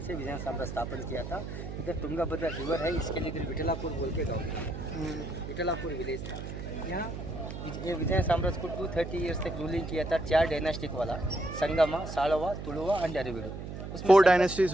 से विजयनगर साम्राज्य स्थापन किया था। इधर तुंगाभद्रा रिवर है, इसके लिए इधर विठलापुर बोल के गाँव है, विठलापुर विलेज था। यहाँ ये विजय साम्राज्य को 230 ईयर्स तक रूलिंग किया था। 4 डायनेस्टिक वाला, Sangama, Saluva, Tuluva and Aravidu. 4 dynasties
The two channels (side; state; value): right; noise; hum, 8 dB below the sound